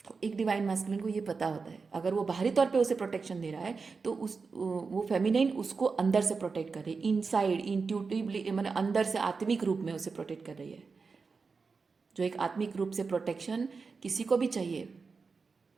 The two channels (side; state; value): left; quieter; 4.7 dB